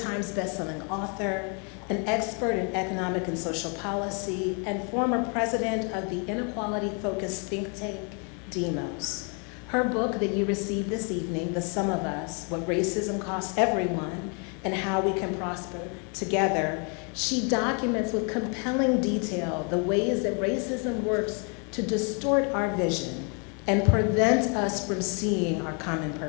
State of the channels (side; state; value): right; quieter; 37.0 dB